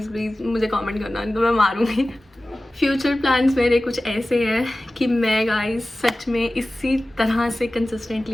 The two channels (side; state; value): both; normal; correlation 0.96